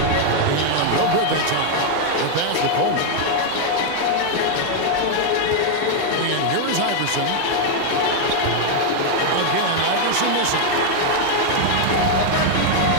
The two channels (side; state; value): both; different; correlation 0.00